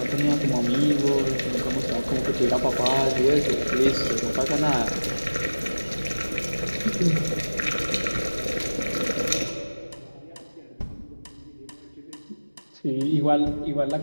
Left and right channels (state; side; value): inverted; both; correlation -1.00